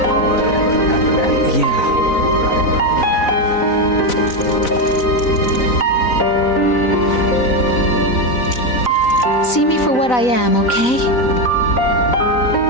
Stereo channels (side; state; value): right; late; 4.0 ms